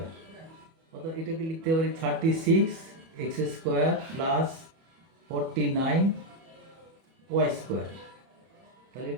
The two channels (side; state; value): left; late; 31 ms